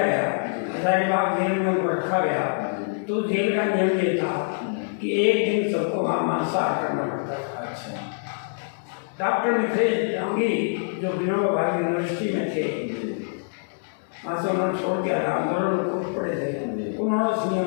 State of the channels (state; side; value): silent; right; digital silence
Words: गया, हजारीबाग जेल में उनको रखा गया, तो जेल का नियम ये था कि एक दिन सबको वहाँ मांसाहार करना पड़ता था। अच्छा, डॉक्टर मिथिलेश दांगी जो विनोबा भावे यूनिवर्सिटी में थे, वहाँ से उन्होंने छोड़ दिया था, आंदोलन में कूद पड़े थे, उन्होंने उस